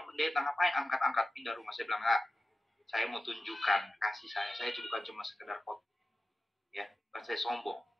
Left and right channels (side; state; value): both; normal; correlation 0.95